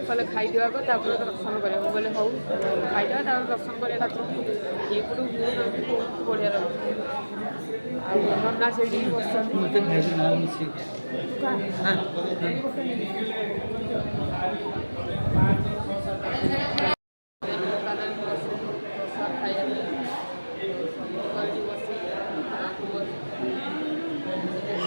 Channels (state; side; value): inverted; both; correlation -1.00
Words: कले खाईदेवा दर्शन करा बोले हूँ खाईदेवा दर्शन करा ठाकुर ये पटू बहुत बढ़िया लगे नना से बस